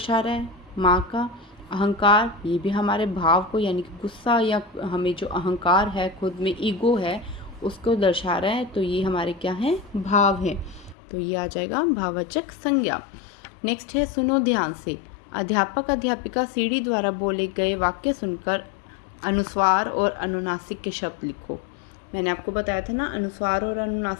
रहा है माँ का, अहंकार, ये भी हमारे भाव को यानी कि गुस्सा या हमें जो अहंकार है, खुद में ईगो है, उसको दर्शा रहा है, तो ये हमारे क्या हैं, भाव हैं। तो ये आ जाएगा भाववाचक संज्ञा। नेक्स्ट है सुनो ध्यान से। अध्यापक अध्यापिका सीढ़ी द्वारा बोले गए वाक्य सुनकर अनुस्वार और अनुनासिक के शब्द लिखो। मैंने आपको बताया था ना, अनुस्वार और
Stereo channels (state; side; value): drops out; right; at 11.0 s